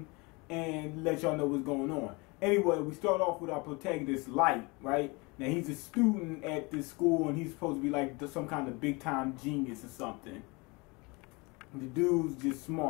and let y'all know what's going on. Anyway, we start off with our protagonist, Light, right? Now, he's a student at this school, and he's supposed to be like some kind of big-time genius or something. The dude's just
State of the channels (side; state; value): right; quieter; 27.0 dB